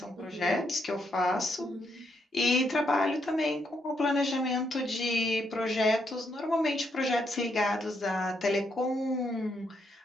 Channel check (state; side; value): normal; both; correlation 0.77